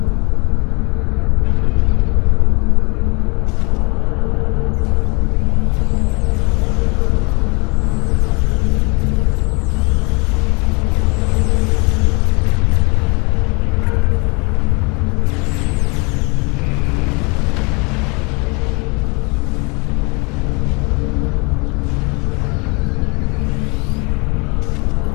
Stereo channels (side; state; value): right; quieter; 30.2 dB